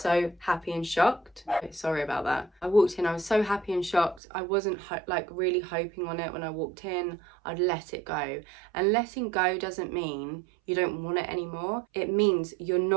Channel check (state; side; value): drops out; left; at 4.2 s